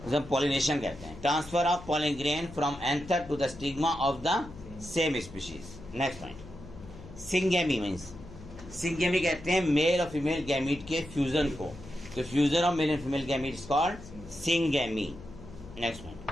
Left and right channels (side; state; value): left; noise; hum, 16 dB below the sound